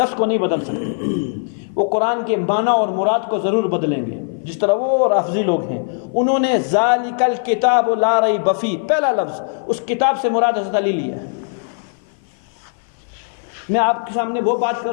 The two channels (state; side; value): silent; right; 56 dB below the other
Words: کو نہیں بدل سکتے۔ وہ قرآن کے معنی اور مراد کو ضرور بدلیں گے، جس طرح وہ رافضی لوگ ہیں، انہوں نے ذالک الکتاب لا ریب فیہ، پہلا لفظ اس کتاب سے مراد حضرت علی لیا ہے۔ میں آپ کے سامنے وہ بات